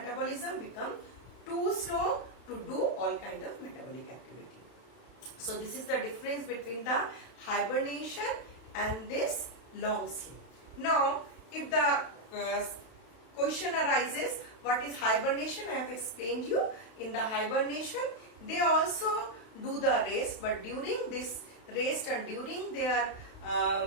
become too slow to do all kind of metabolic activity. So this is the difference between the hibernation and this long sleep. Now if the question arises, what is hibernation? I have explained you. In the hibernation they also do the rest, but during this rest and during their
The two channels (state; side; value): late; right; 32 ms